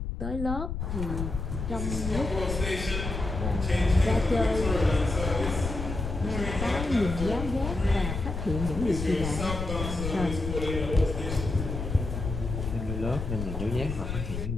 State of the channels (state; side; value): noise; left; rumble, 5 dB below the sound